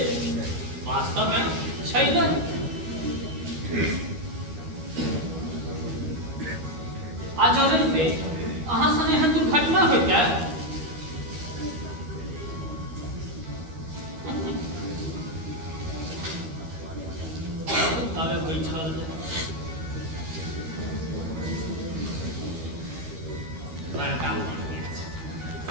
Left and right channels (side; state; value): left; late; 13 ms